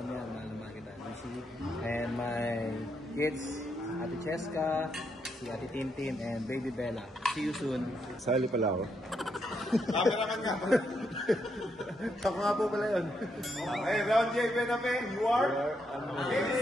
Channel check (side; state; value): both; normal; correlation 0.79